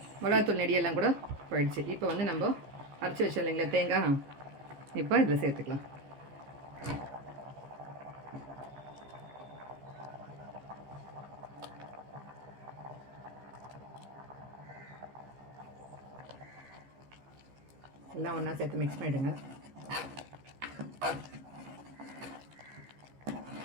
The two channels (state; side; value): late; left; 15 ms